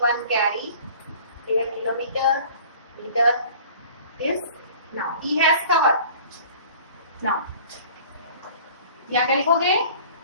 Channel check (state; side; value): inverted; both; correlation -0.47